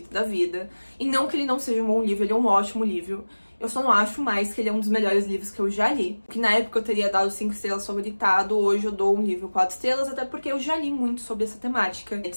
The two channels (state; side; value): inverted; both; correlation -1.00